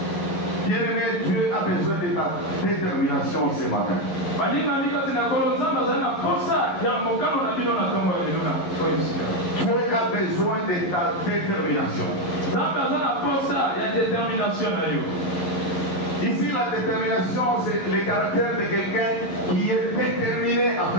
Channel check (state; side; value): late; right; 11 ms